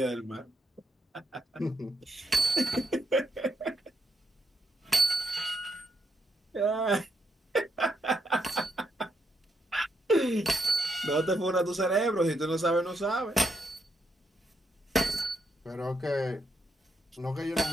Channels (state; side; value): normal; both; correlation 0.79